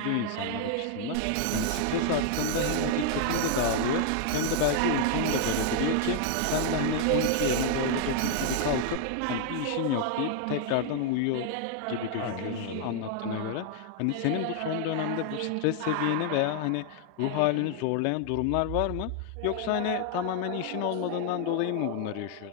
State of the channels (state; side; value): different; both; correlation 0.00